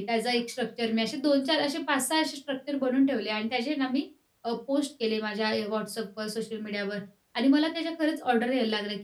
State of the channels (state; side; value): identical; both; correlation 1.00